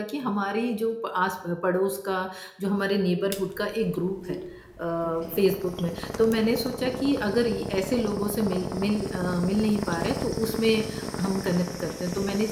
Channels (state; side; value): identical; both; correlation 1.00